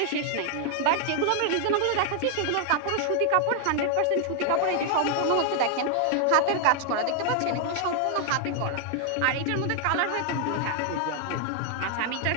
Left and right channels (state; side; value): different; both; correlation 0.00